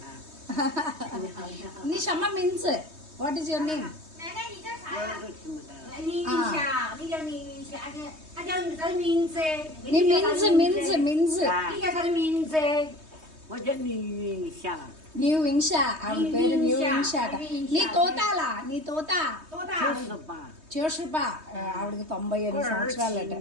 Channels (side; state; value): left; late; 3.2 ms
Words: నీ షమ్మ means what is your name? న్యూ వింషా, ఆవిడ పేరు న్యూ వింషా అట. నీ తోతాలా? నీ తోత చూషుపా. ఆవిడకి 98 సంవత్సరాలట.